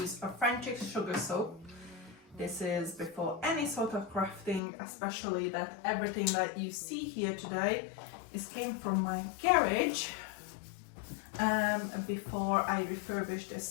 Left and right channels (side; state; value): right; drops out; at 4.6 s